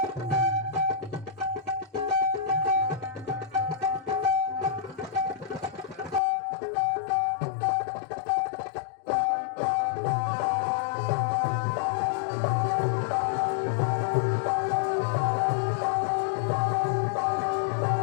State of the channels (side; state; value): right; drops out; at 6.2 s